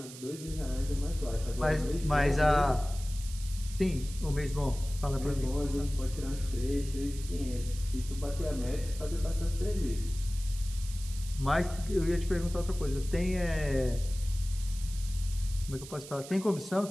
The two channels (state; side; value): noise; right; hiss, 14 dB below the sound